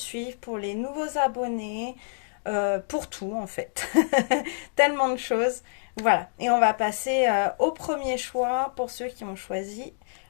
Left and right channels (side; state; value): right; silent; digital silence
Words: pour les nouveaux abonnés, pour tout en fait. Tellement de choses. Voilà. Et on va passer au premier choix pour ceux qui ont choisi